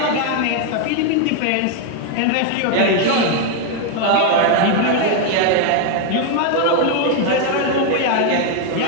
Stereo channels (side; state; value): both; different; correlation 0.01